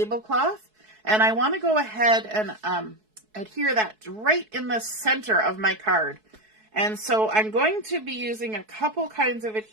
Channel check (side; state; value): left; late; 4.6 ms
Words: and I want to go ahead and adhere that right in the center of my card. And so I'm going to be using a couple kinds of